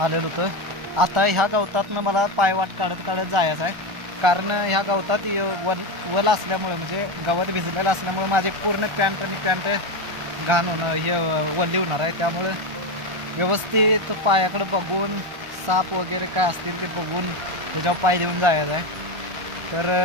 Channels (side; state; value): left; late; 1.4 ms